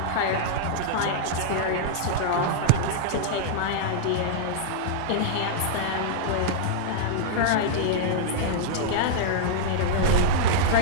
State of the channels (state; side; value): different; both; correlation -0.02